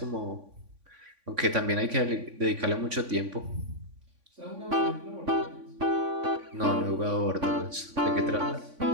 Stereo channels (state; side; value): late; left; 3.5 ms